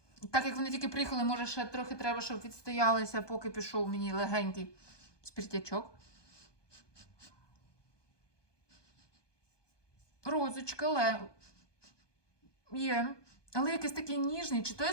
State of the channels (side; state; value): right; late; 1.2 ms